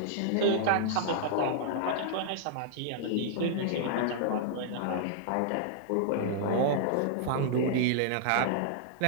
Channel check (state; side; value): different; both; correlation -0.01